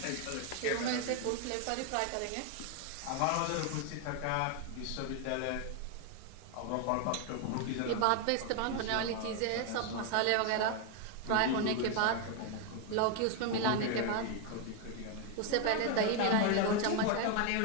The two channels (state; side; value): different; both; correlation 0.01